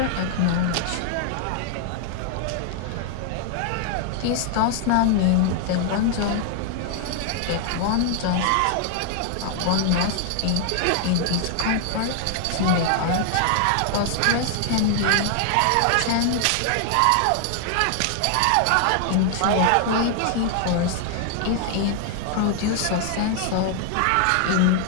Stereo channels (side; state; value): both; different; correlation 0.00